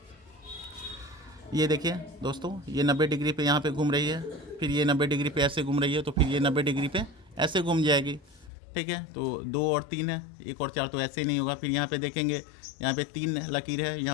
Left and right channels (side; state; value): right; drops out; at 8.5 s